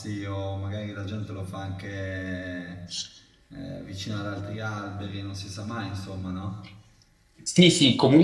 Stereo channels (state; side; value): identical; both; correlation 1.00